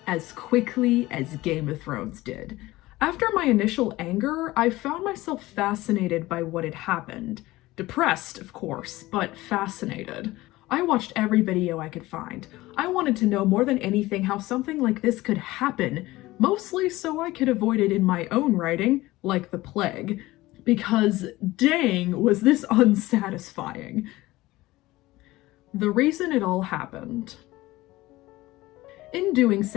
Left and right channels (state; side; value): quieter; right; 18.4 dB